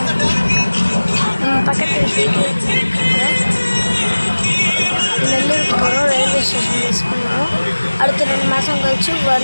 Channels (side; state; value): both; inverted; correlation -1.00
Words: பக்கத்தில் நெல்லூருக்கு போகிறோம். ரயில்வே ஸ்டேஷன் மிஸ் பண்ணுறோம். அடுத்த 2 மாதம் கழிச்சு